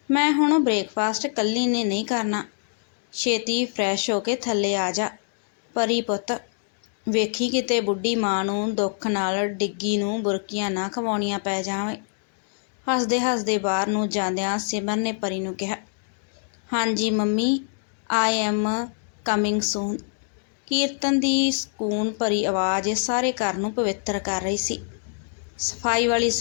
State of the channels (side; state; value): right; silent; digital silence